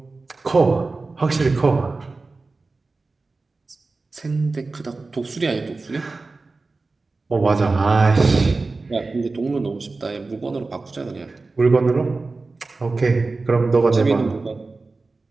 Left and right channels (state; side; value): quieter; left; 3.7 dB